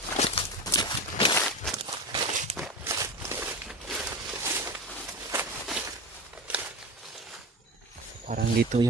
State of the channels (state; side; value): normal; both; correlation 0.26